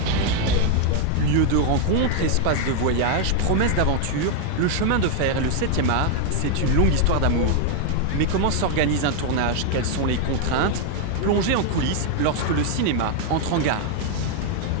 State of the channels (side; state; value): both; different; correlation 0.00